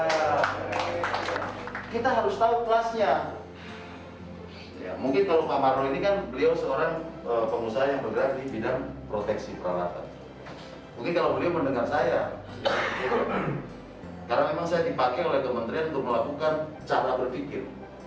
Kita harus tahu kelasnya. Ya, mungkin kalau Pak Marlo ini kan beliau seorang pengusaha yang bergerak di bidang proteksi peralatan. Mungkin kalau beliau mendengar saya, karena memang saya dipakai oleh kementerian untuk melakukan cara berpikir.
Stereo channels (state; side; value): identical; both; correlation 1.00